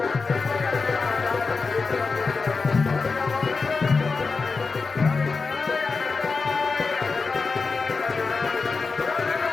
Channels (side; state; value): right; quieter; 4.4 dB